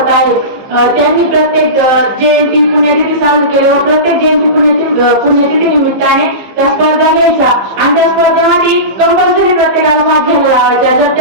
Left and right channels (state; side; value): late; left; 15 ms